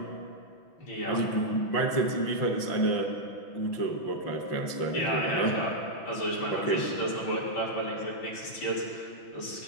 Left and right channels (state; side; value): late; right; 6.0 ms